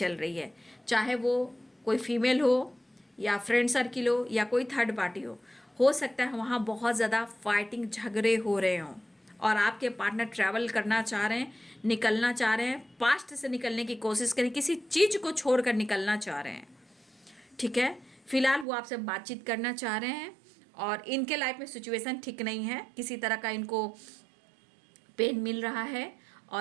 रही है, चाहे वो कोई फीमेल हो या फ्रेंड सर्किल हो या कोई थर्ड पार्टी हो सकता है वहाँ बहुत ज़्यादा फाइटिंग, झगड़े हो रहे हों, और आपके पार्टनर ट्रैवल करना चाह रहे हैं, निकलना चाह रहे हैं, पास्ट से निकलने की कोशिश करें, किसी चीज़ को छोड़कर निकलना चाह रहे हैं, ठीक है। फिलहाल वो आपसे बातचीत करना चाह रहे हैं और इनके लाइफ में सिचुएशन ठीक नहीं है, किसी तरह का इनको पेन मिल रहा है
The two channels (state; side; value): drops out; left; at 18.7 s